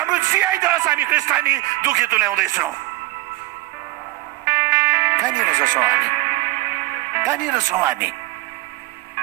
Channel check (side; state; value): left; quieter; 20.4 dB